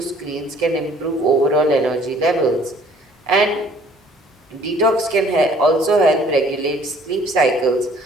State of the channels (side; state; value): both; normal; correlation 0.56